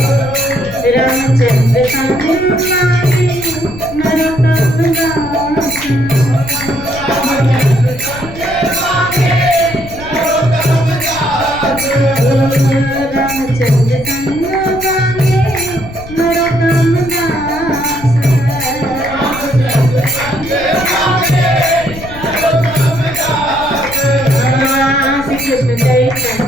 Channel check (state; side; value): noise; left; rumble, 14 dB below the sound